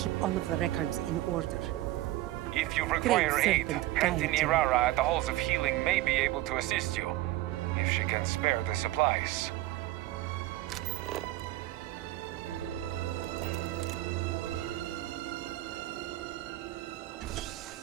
all of the records in order. If you require Great aid, serpent, Auntie guide you. Nirara at the Halls of Healing may be able to assist you, if she can spare the supplies.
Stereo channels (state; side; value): quieter; left; 16.5 dB